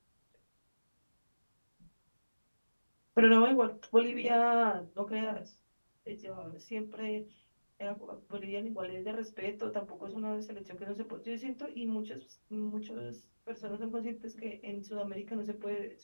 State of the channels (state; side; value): inverted; both; correlation -1.00